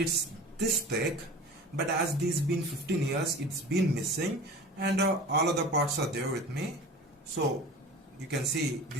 this thick, but as this been 15 years, it's been missing, and all other parts are there with me. So you can see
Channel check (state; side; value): normal; both; correlation 0.38